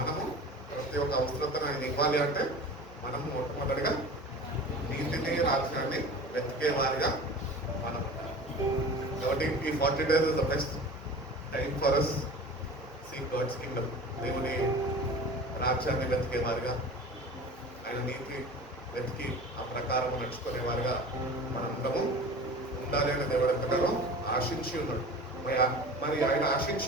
మనము ప్రతి ఒక్క అవసరతను ఆయన ఇవ్వాలి అంటే మనము మొట్టమొదటిగా నీతిని రాజ్యాన్ని వెతికే వారిగా మనం ఉండాలి. కాబట్టి ఈ 40 days is the best time for us seek God's kingdom. దేవుని రాజ్యాన్ని వెతికే వారిగా, ఆయన నీతి వెతికి ఆ ప్రకారం నడుచుకునేవారుగా మనందరము ఉండాలి అని దేవుడు ఎంతగానో ఆశించి ఉన్నాడు. మరి ఆయన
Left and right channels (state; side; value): normal; both; correlation 0.38